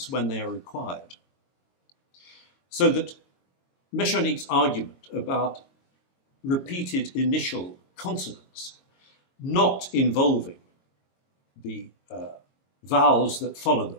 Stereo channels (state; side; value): late; right; 22 ms